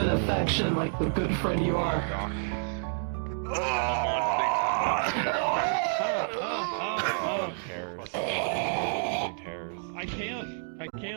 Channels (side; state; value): left; silent; digital silence